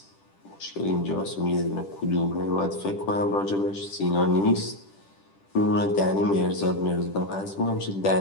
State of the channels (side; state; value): right; late; 10 ms